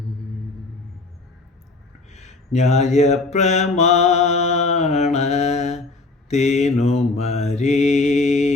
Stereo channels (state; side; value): quieter; right; 3.4 dB